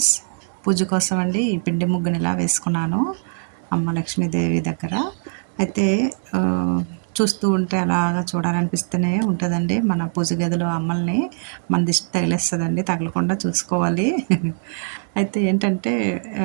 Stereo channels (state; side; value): silent; left; digital silence